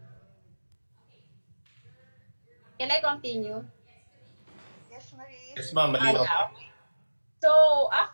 Can I continue? Yes, Marie. Yes, ma'am. Malinaw. Yeah. So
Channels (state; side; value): inverted; both; correlation -1.00